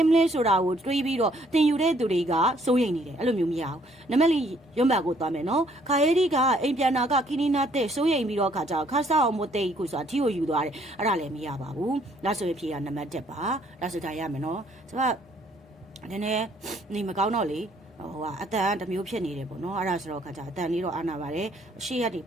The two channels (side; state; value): both; normal; correlation 0.65